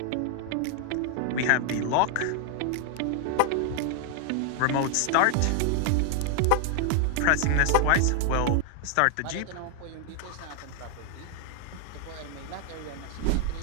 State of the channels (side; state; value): both; different; correlation 0.00